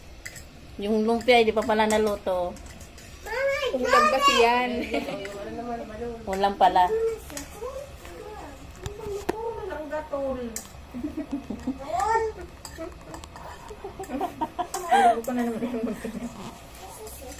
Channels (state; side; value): identical; both; correlation 1.00